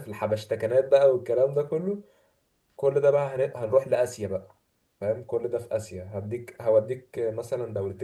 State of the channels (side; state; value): both; identical; correlation 1.00